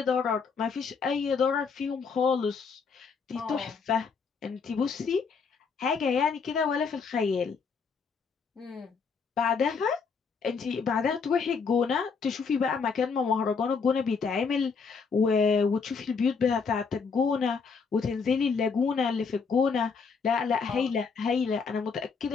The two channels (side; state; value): right; quieter; 5.4 dB